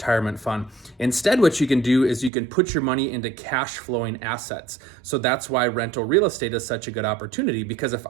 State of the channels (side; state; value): left; drops out; at 2.3 s